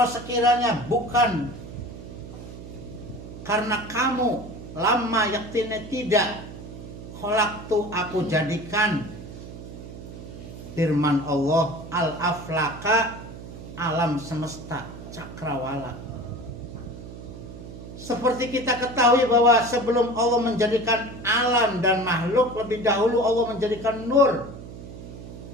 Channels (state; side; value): noise; right; hum, 13 dB below the sound